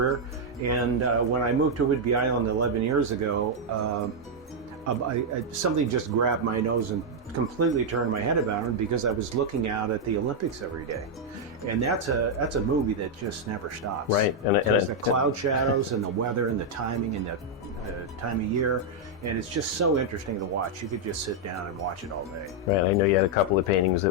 and when I moved to Whidbey Island 11 years ago, something just grabbed my nose and completely turned my head about, because I was looking out at the Olympics every day, and that's a movie that just never stops. Right, and the cloud shadows and the weather and the timing and the time of year, and it's just so interesting to watch. You could just sit down and watch it all day. Right, I know you had a couple of paintings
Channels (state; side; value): normal; both; correlation -0.02